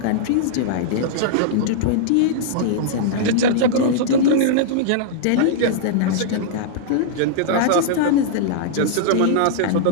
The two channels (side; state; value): both; different; correlation -0.02